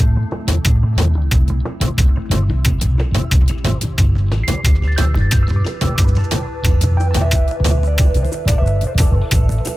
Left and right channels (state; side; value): normal; both; correlation 0.96